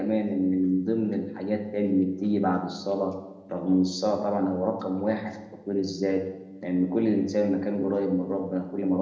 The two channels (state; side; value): identical; both; correlation 1.00